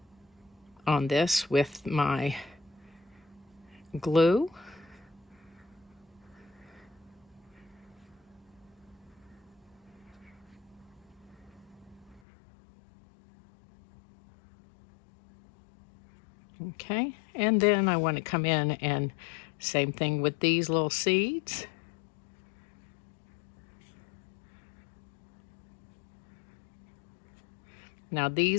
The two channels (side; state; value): right; drops out; at 12.2 s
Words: this with my glue. Okay, and then I want to come in and same thing with these little seeds. Now